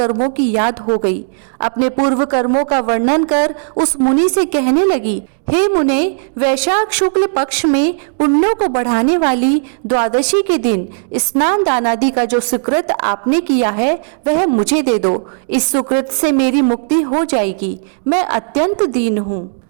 की याद हो गई। अपने पूर्व कर्मों का वर्णन कर उस मुनि से कहने लगी, हे मुने, वैशाख शुक्ल पक्ष में पुण्यों को बढ़ाने वाली द्वादशी के दिन स्नान दान आदि का जो सुकृत आपने किया है वह मुझे दे दो। इस सुकृत से मेरी मुक्ति हो जाएगी। मैं अत्यंत दीन हूँ,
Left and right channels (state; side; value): silent; left; digital silence